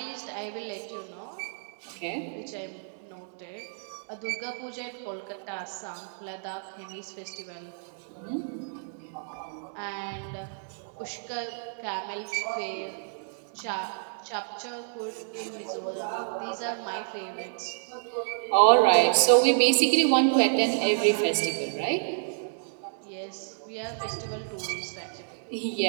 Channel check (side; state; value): left; silent; 58 dB below the other